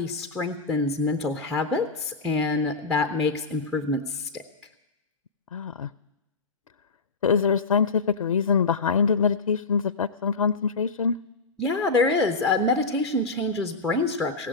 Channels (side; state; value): right; quieter; 4.0 dB